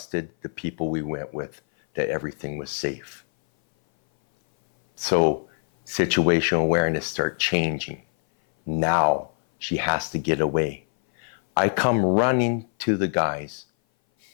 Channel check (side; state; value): right; silent; 58 dB below the other